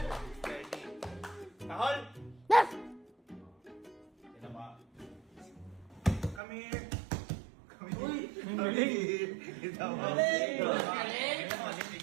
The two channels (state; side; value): drops out; left; at 6.4 s